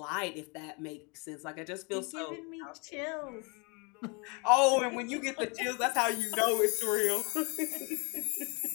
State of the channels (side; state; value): right; quieter; 31.9 dB